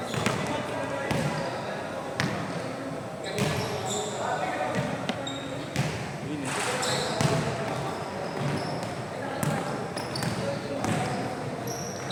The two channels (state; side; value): identical; both; correlation 1.00